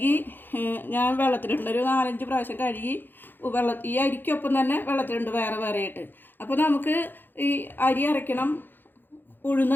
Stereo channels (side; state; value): right; late; 0.094 ms